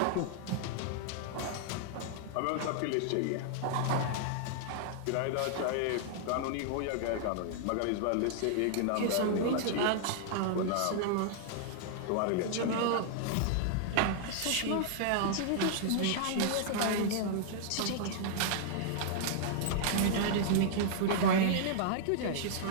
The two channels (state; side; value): different; both; correlation -0.01